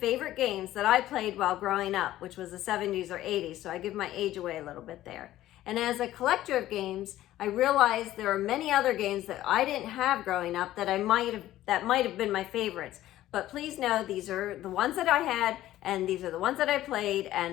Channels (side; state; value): right; quieter; 14.3 dB